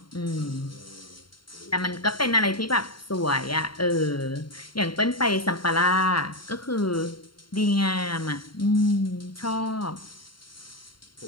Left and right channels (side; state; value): right; late; 0.73 ms